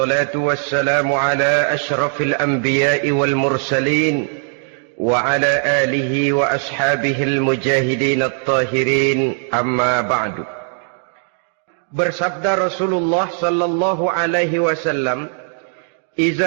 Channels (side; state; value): left; silent; digital silence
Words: wassalamu ala ashrafil anbiya'i wal mursalin wa ala alihi wa ashabihi al-mujahidin at-tahirin, amma ba'du. Bersabda Rasulullah sallallahu alaihi wasallam,